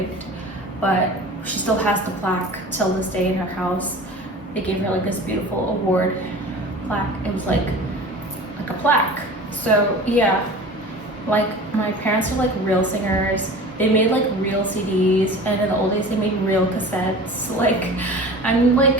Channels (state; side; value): normal; both; correlation 0.38